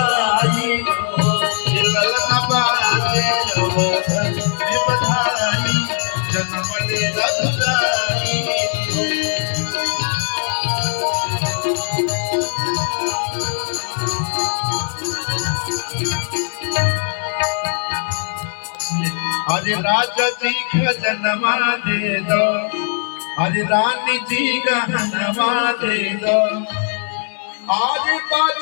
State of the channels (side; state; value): right; silent; digital silence